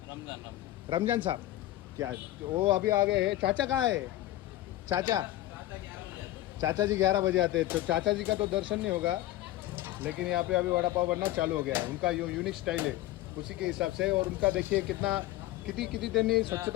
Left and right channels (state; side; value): quieter; right; 15.6 dB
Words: रमजान साहब. क्या वो अभी आ गए हैं. चाचा कहाँ है? चाचा जी 11 बजे आते हैं. तो चाचा जी का तो दर्शन नहीं होगा लेकिन यहाँ पे अभी वड़ा पाव बनना चालू हो गया है. उनका जो यूनिक स्टाइल है उसी के हिसाब से. और उनका देखिए किती त्यांनी